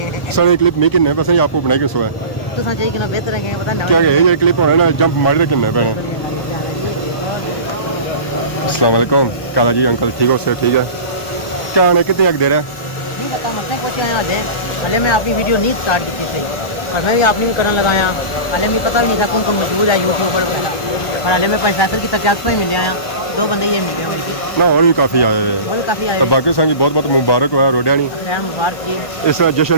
सर क्लिप नहीं किन्ने बस आपको बनाई के सोए तो चाहिए कि ना बेहतर है पता नहीं क्या ये क्लिप होने ना जंप मार के किन्ने पैने। अस्सलाम वालेकुम काला जी अंकल ठीक हो? सर ठीक है। क्या आने कितने तक दे रहा है? नहीं पता मसले पहुंचे हैं हाले मैं अपनी वीडियो नहीं स्टार्ट की थी पर मैं भी आपने भी करने लगाया। हाले मुझे पता भी नहीं था कौन कौन मौजूद है यूट्यूबर वगैरह और हाले मैं पैसा की तकियात में मिले आया 2 बंदे ये मिले मुझे ना और भी काफ़ी आए हुए और काफ़ी आए तो बाकी संगी बहुत बहुत मुबारक हुआ रोडिया नहीं। खैर मुबारक जी इस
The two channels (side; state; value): right; late; 1.1 ms